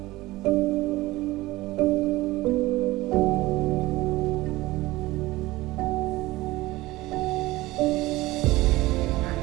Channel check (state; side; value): quieter; left; 18.9 dB